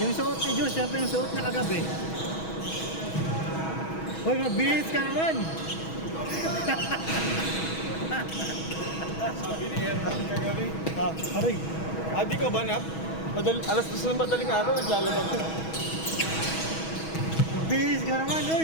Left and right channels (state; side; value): late; right; 6.2 ms